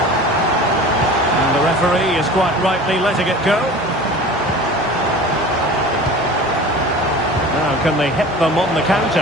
The referee is quite rightly letting it go. Now can they hit them on the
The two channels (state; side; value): normal; both; correlation 0.39